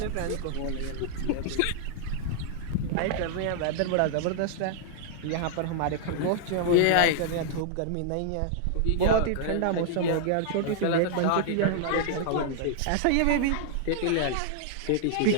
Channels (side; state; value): both; different; correlation -0.01